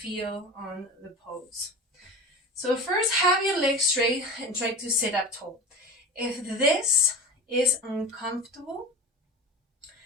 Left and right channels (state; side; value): normal; both; correlation 0.31